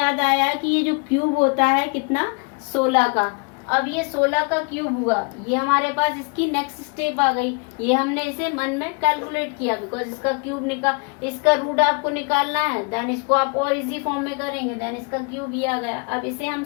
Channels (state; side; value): quieter; right; 34.6 dB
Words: आया कि ये जो क्यूब होता है कितना 16 का। अब ये 16 का क्यूब हुआ, ये हमारे पास इसकी नेक्स्ट स्टेप आ गई। ये हमने इसे मन में कैलकुलेट किया बिकॉज इसका क्यूब इसका रूट आपको निकालना है। देन इसको आप और इजी फॉर्म में करेंगे, देन इसका क्यूब ये आ गया। अब इसे हम